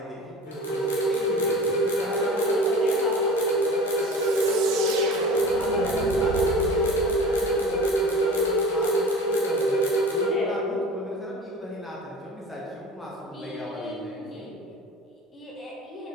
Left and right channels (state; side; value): normal; both; correlation 0.38